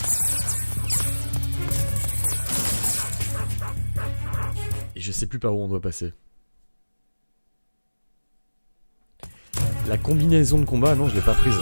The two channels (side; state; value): both; inverted; correlation -1.00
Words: Et je sais plus par où on doit passer. La combinaison de combat, non, je l'ai pas prise.